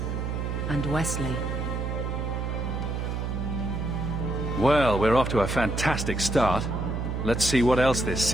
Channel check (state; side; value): noise; right; hum, 2 dB below the sound